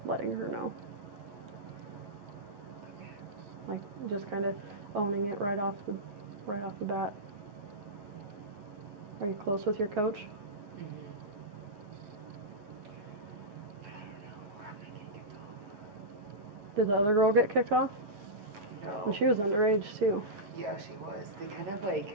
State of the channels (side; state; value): left; late; 9.5 ms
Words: letting her know. Like just kind of owning it right off the bat. Are you close with your coach? Mm-hmm. But I don't know where I'm gonna get kicked off. Did the other girl get kicked off? No. And she was underage too. Yeah, she was. They kind of like